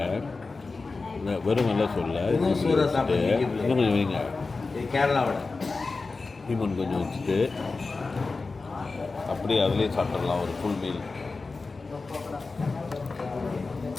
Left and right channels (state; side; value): quieter; right; 3.9 dB